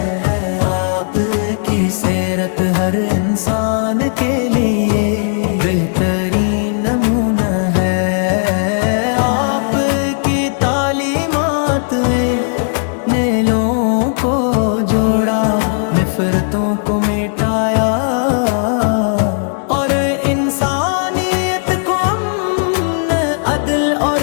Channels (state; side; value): silent; right; digital silence